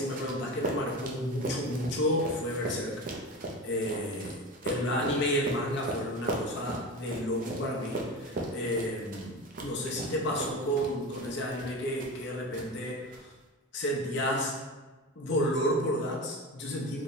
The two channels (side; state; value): both; normal; correlation 0.28